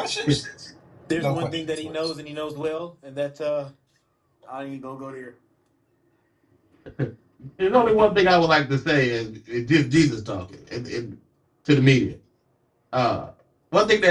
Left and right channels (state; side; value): identical; both; correlation 1.00